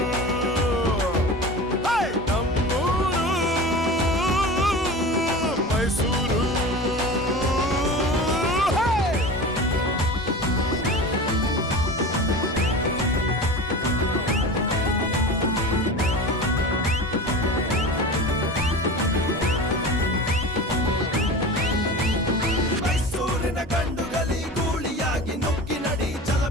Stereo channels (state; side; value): normal; both; correlation 0.32